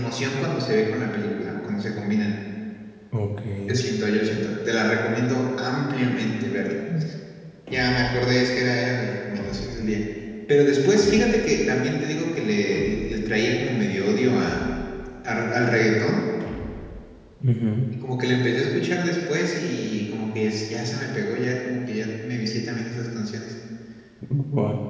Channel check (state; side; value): identical; both; correlation 1.00